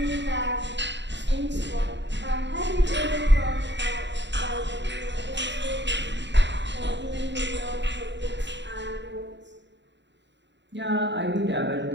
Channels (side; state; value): left; late; 0.52 ms